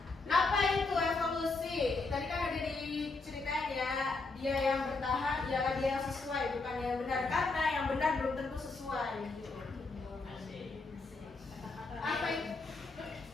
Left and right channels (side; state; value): right; quieter; 3.7 dB